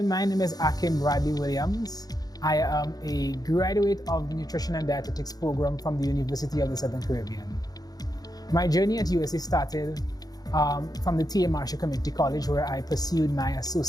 my name is Akim Bradley Williams. I am a graduate of the Nutrition and Dietetics program from the University of the Southern Caribbean. My journey at USC started from the T.A. Marshall Community College, where I pursued my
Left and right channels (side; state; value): right; late; 0.19 ms